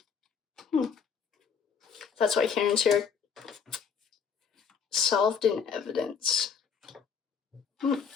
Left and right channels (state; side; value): quieter; right; 6.4 dB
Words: That's why Karen's here. Solved in evidence.